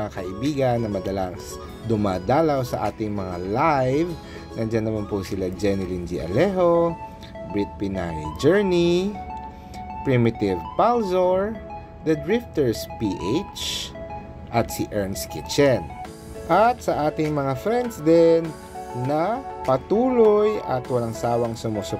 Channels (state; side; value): identical; both; correlation 1.00